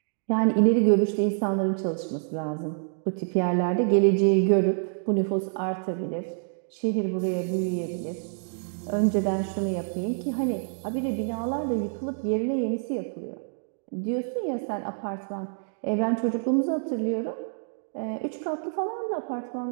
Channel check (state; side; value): silent; left; digital silence